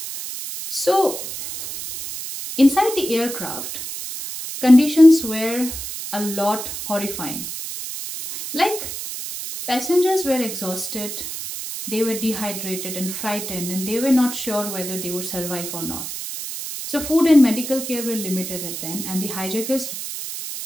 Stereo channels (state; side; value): noise; right; hiss, 7 dB below the sound